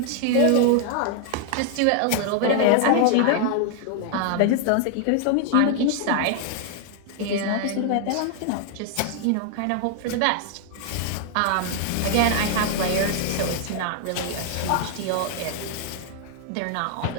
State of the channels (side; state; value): both; different; correlation 0.00